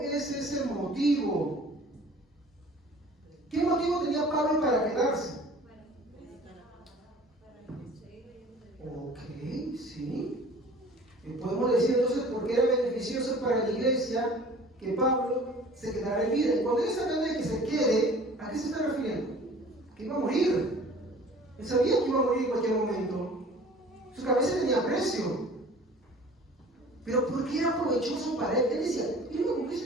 es ese motivo? ¿Qué motivo tenía Pablo para quedarse? Ok, sí. Podemos decir entonces por qué era beneficioso para la iglesia que Pablo se quedara en vida. Y cuando él está hablando de que se quede, ¿a qué se está refiriendo? Que iba a morir. Él sabía que iba a morir en cualquier momento. Su cabeza tenía precio. Pero ¿por qué era provechoso para él? Él decía, mira, con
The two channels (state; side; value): normal; both; correlation 0.47